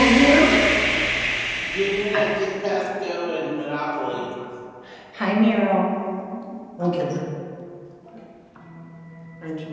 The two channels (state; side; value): identical; both; correlation 1.00